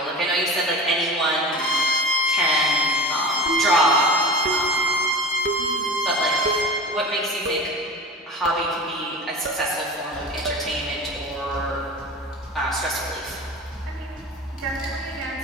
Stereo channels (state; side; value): normal; both; correlation 0.33